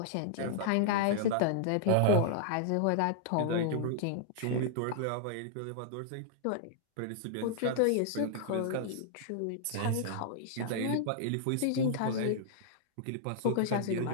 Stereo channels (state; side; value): different; both; correlation -0.01